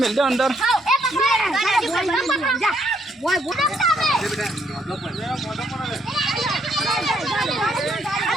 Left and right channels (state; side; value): normal; both; correlation 0.71